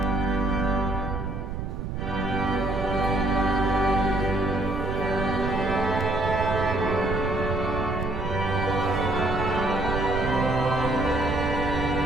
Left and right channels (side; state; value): right; noise; rumble, 5 dB below the sound